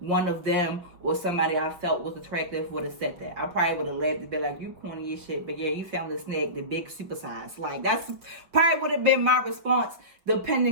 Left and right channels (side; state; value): left; late; 5.4 ms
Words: of them or somebody I felt was attractive would have said that. I probably would have laughed and be like, you corny as shit, but yeah, you found the snake, the big super size. Like, that's probably would have been my response